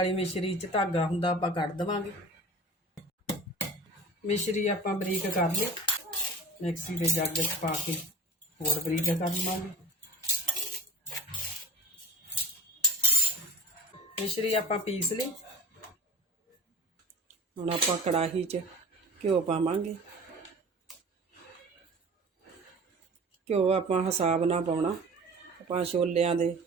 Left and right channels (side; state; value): both; normal; correlation 0.37